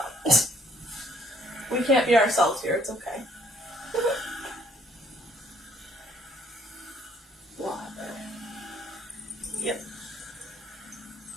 We can't be ourselves here. It's okay. Water. Yep.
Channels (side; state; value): both; normal; correlation 0.64